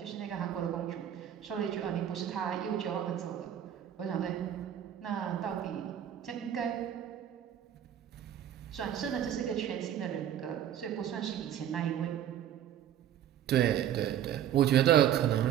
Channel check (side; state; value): left; quieter; 10.5 dB